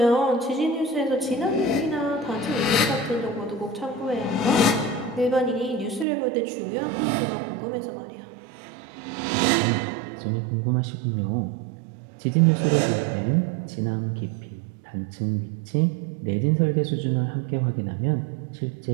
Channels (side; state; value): left; drops out; at 6.1 s